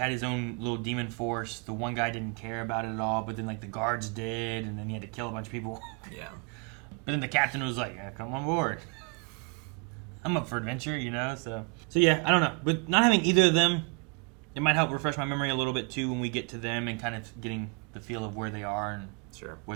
his own little demon force. The one guy didn't care about it at all, but then, like, the guards did, and then he had to kill a bunch of people. Yeah. But then the captain was like, yeah, come on board. I'm up for adventure, you know? So yeah, I don't know. But not having either of them, it might help refresh my memory a little bit, too, when we get to them and kind of getting the feel of where they are and Sure.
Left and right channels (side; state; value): left; quieter; 32.7 dB